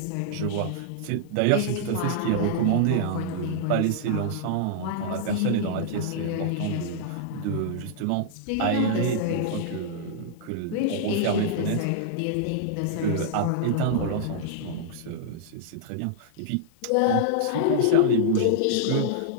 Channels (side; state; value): both; different; correlation -0.01